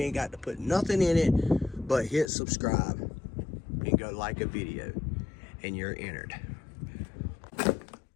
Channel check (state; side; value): drops out; right; at 2.3 s